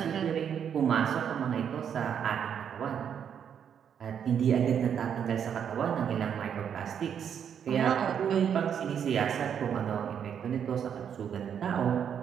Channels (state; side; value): quieter; left; 8.2 dB